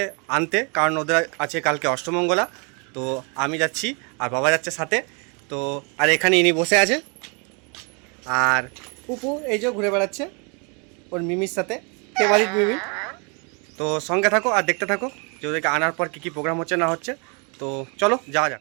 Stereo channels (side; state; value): left; quieter; 34.3 dB